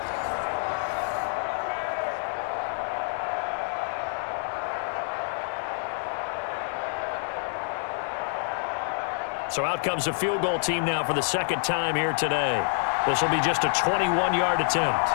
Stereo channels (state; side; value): silent; right; 60 dB below the other